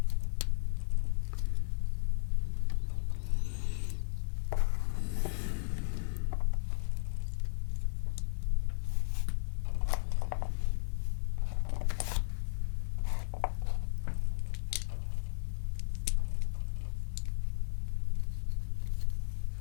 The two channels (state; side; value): silent; right; digital silence